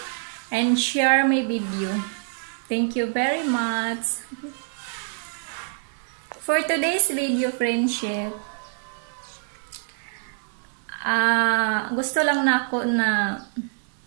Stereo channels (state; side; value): silent; left; 62 dB below the other